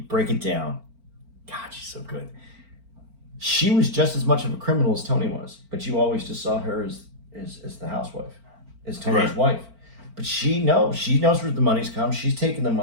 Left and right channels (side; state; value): left; late; 4.4 ms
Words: break it down, God, she's so good. She was just as much of a criminal as Tony was, but you always just saw her as the housewife, as Tony's wife. But she knows where the money's come. She's taking the